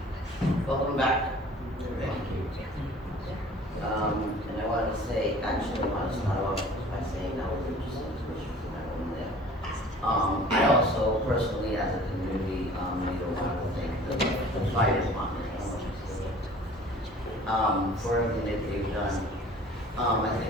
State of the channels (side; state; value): both; normal; correlation 0.48